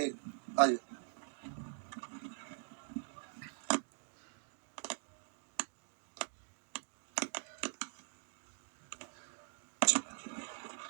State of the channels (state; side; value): silent; left; digital silence